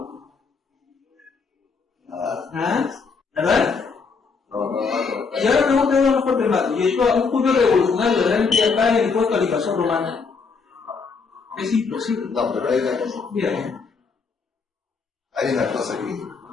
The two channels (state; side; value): quieter; right; 5.0 dB